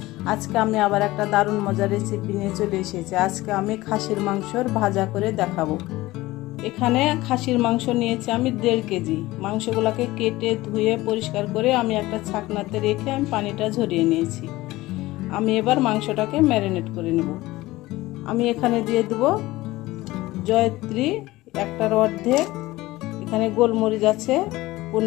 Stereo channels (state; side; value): quieter; right; 18.5 dB